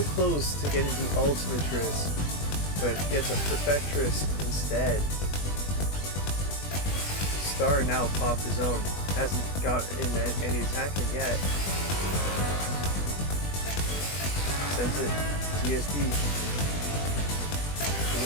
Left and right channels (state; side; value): late; right; 20 ms